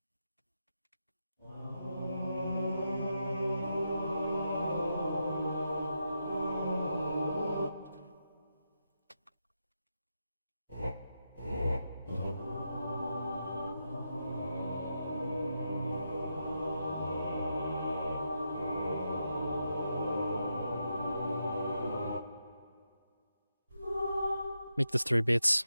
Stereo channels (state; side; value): inverted; both; correlation -0.85